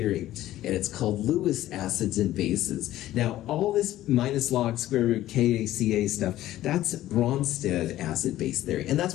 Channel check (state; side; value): quieter; right; 14.3 dB